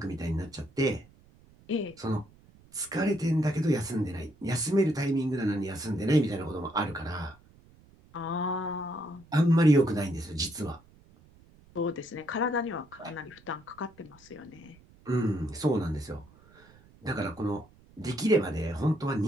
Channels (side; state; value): right; noise; rumble, 26 dB below the sound